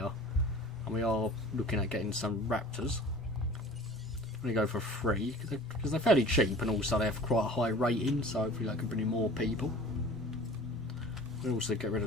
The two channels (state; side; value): normal; both; correlation 0.44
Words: And we are looking at getting some Raptors. I'm going to go for 3 because they're fairly cheap, and also they have quite a high rating, so hopefully that can bring in more people. We'll also get rid